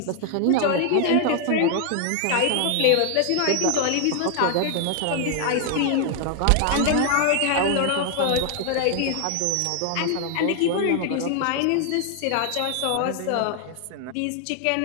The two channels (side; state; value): both; different; correlation 0.00